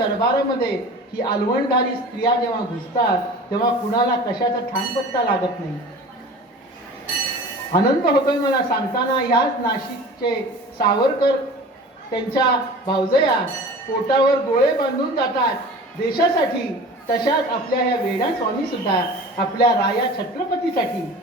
ही अलवणधारी स्त्रिया जेव्हा घुसतात तेव्हा कुणाला कशाचा ठाणपत्ता लागत नाही. आनंद होतोय मला सांगताना, ह्याच नाशिकचे सावरकर त्यांच्या भावजया पोटावर गोळे बांधून जातात देशासाठी, तशाच आपल्या ह्या वेणास्वामी सुद्धा आपल्या राया छत्रपतीसाठी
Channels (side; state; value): both; normal; correlation 0.39